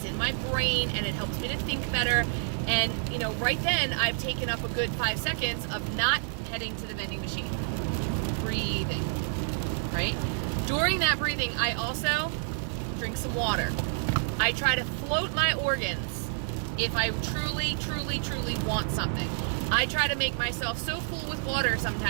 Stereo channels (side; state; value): left; silent; digital silence